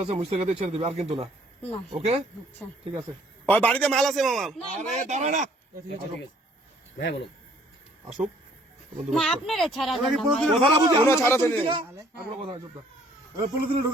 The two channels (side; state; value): both; normal; correlation 0.61